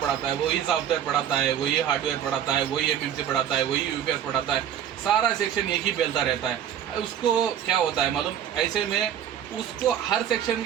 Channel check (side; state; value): left; quieter; 9.8 dB